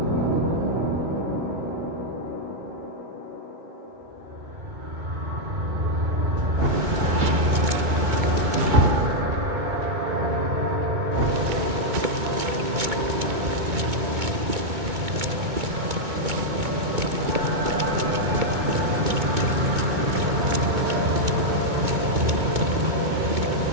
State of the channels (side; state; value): left; late; 2.2 ms